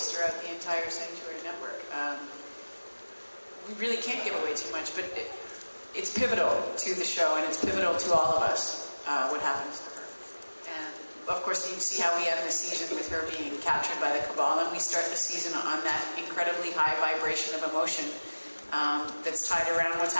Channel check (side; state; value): both; inverted; correlation -1.00